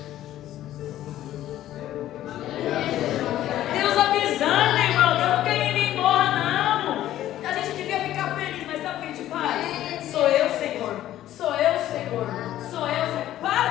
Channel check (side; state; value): right; quieter; 13.2 dB